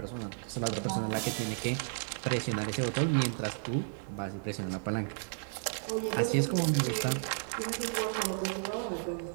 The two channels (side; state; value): left; silent; digital silence